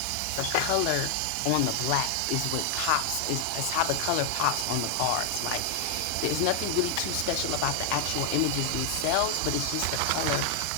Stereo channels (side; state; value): both; different; correlation 0.00